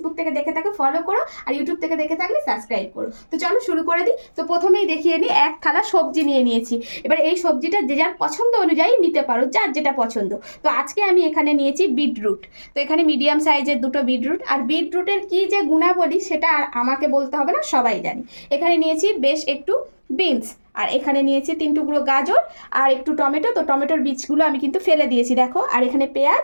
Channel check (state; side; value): inverted; both; correlation -1.00